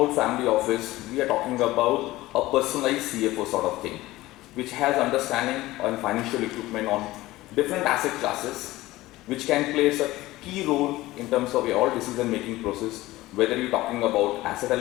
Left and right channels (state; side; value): quieter; right; 17.8 dB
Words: family office, we are talking about a personalized CFO sort of thing, which has understanding on financial equipment on different asset classes, which can play a key role in terms of your all decision-making process, whether you're talking about asset